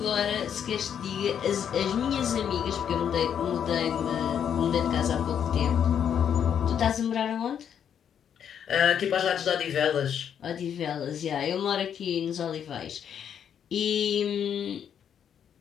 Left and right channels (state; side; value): quieter; right; 8.6 dB